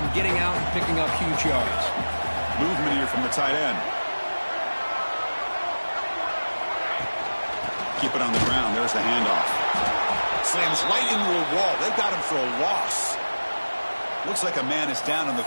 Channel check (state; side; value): inverted; both; correlation -1.00